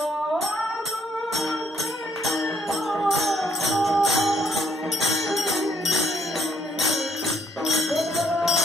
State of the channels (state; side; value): normal; both; correlation 0.69